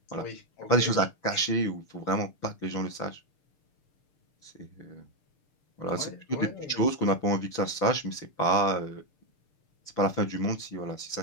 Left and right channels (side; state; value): right; late; 6.7 ms